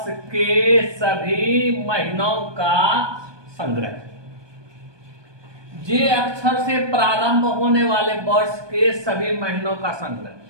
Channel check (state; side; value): late; left; 1.2 ms